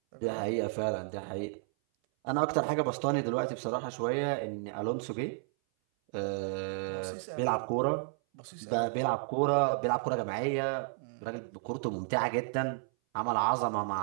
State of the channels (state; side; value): silent; left; 56 dB below the other